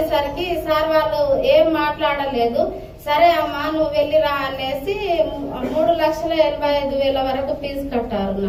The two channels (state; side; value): identical; both; correlation 1.00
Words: సార్ వాళ్ళు ఏం మాట్లాడలేదు. సరే అమ్మా నువ్వు వెళ్ళిరా అనేసి 3,85,000 వరకు ఫీజు కట్టారు.